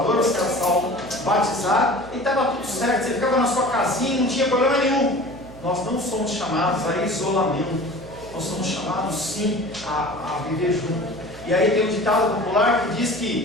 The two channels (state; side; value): noise; right; hum, 18 dB below the sound